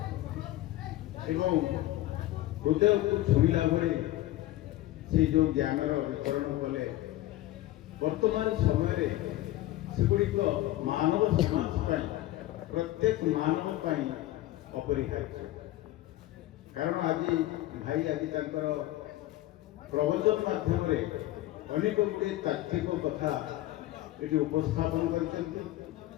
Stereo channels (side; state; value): right; quieter; 15.7 dB